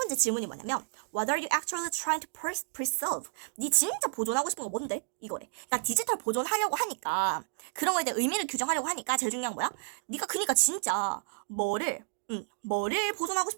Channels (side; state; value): left; silent; digital silence